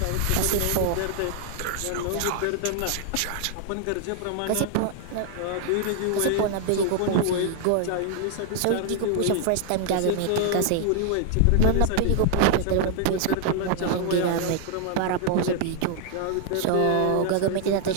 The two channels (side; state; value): both; different; correlation 0.00